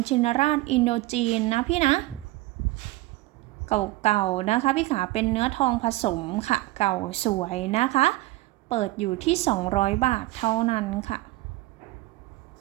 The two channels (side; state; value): left; quieter; 18.8 dB